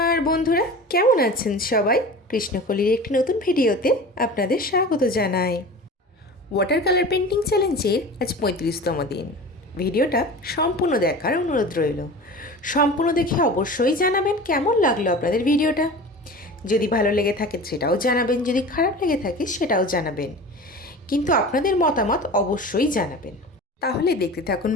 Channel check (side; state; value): both; normal; correlation 0.36